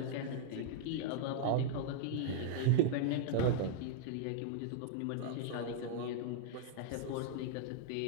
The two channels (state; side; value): different; both; correlation -0.01